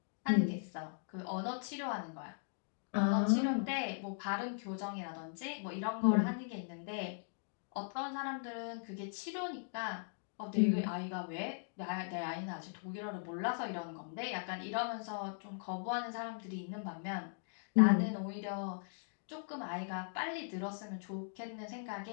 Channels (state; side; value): silent; right; digital silence